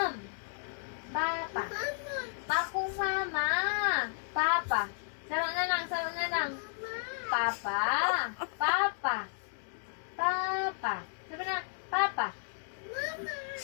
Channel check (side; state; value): right; silent; digital silence